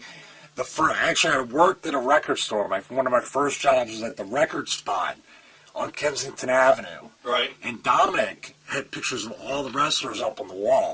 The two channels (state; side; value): identical; both; correlation 1.00